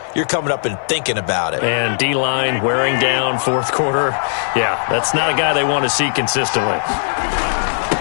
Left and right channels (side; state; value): right; silent; 59 dB below the other